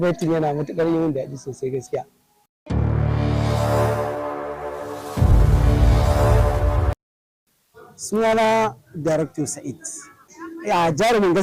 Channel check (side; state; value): both; identical; correlation 1.00